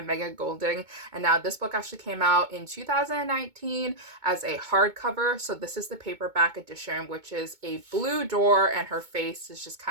Megan Golding, and now this book actually came out in 2019 as a hardcover. So this is the paperback edition, which is a blue door and her face is just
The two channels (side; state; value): left; late; 2.2 ms